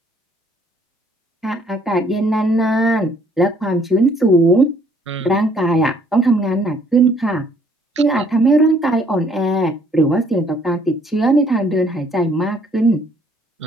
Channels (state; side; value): normal; both; correlation 0.63